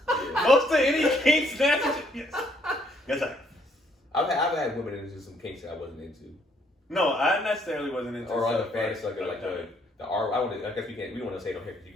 Yeah. Most of any kink snatches, yes. Yes, I. I've had women into some kinks that I wasn't into. No, I necessarily wasn't into. Or other fantasy like the R. I guess we don't want to say it on here because you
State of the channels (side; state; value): both; normal; correlation 0.68